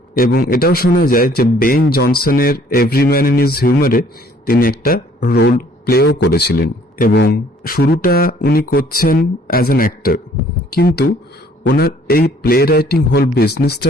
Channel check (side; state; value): both; normal; correlation 0.59